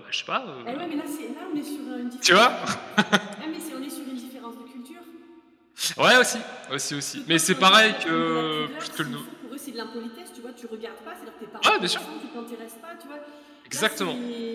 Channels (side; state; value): both; identical; correlation 1.00